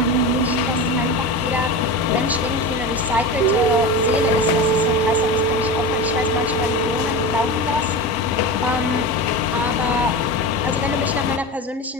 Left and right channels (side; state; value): both; normal; correlation 0.26